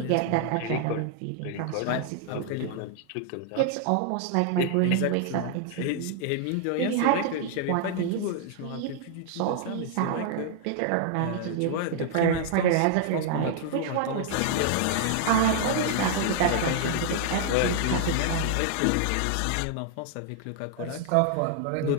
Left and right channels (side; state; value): both; different; correlation -0.01